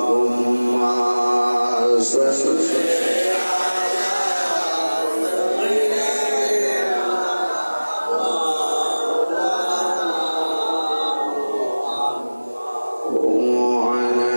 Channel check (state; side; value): inverted; both; correlation -1.00